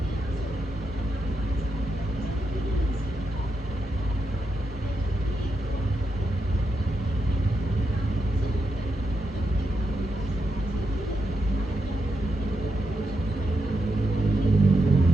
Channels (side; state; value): both; normal; correlation 0.84